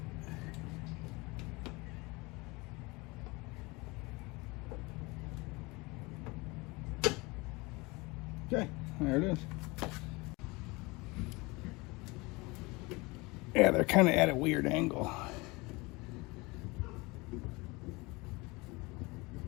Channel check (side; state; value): right; quieter; 24.8 dB